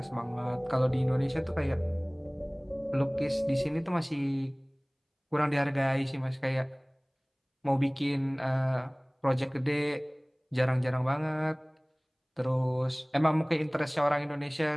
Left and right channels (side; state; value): both; identical; correlation 1.00